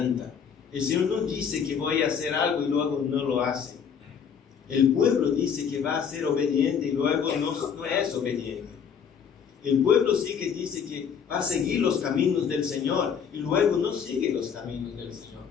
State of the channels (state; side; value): quieter; right; 7.2 dB